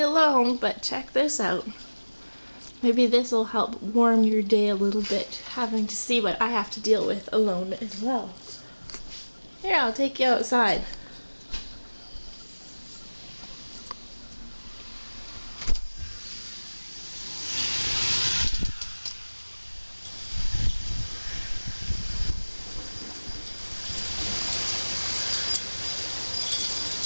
alone, but check this out. Maybe this will help warm your day a little bit, having to see what I have to deal with alone as well. Here, I'll take you outside.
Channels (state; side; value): inverted; both; correlation -1.00